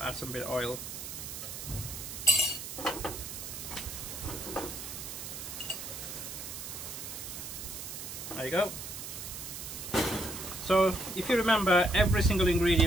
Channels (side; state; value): right; noise; hiss, 8 dB below the sound